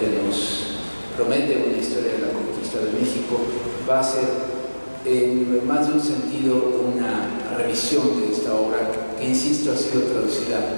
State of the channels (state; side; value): inverted; both; correlation -1.00